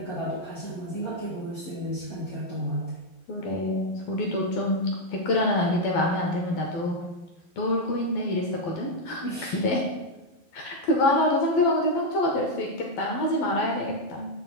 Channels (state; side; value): late; right; 12 ms